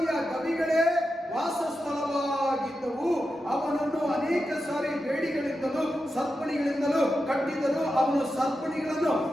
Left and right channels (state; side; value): normal; both; correlation 0.89